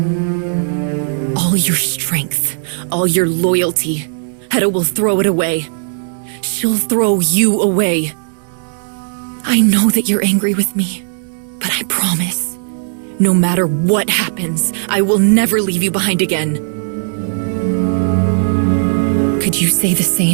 All your strength, all your loyalty, Hedda will throw it away. She'll throw you away. I know that you're angry with me, but I promise, no matter what happens, I will never leave you behind again. Could you say the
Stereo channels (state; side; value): silent; left; digital silence